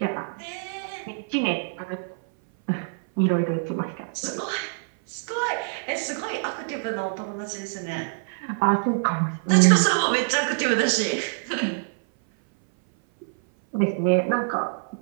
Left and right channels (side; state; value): left; silent; 58 dB below the other